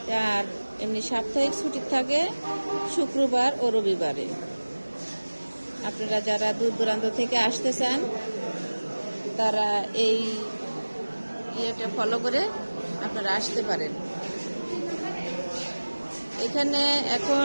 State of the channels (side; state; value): both; inverted; correlation -1.00